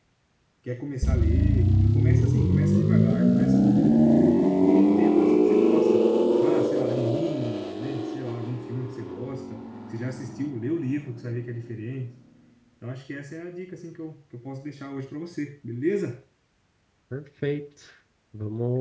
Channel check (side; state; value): both; identical; correlation 1.00